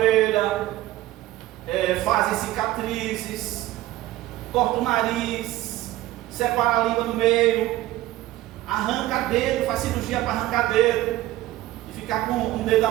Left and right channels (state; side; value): quieter; left; 16.0 dB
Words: fazem cicatrizes, corta o nariz, separa a língua no meio, arranca dedo, faz cirurgia para arrancar dedo e ficar com um dedo